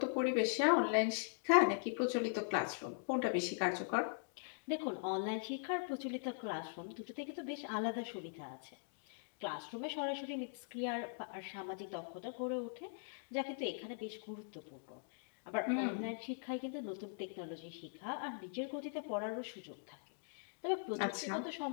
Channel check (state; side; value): silent; right; digital silence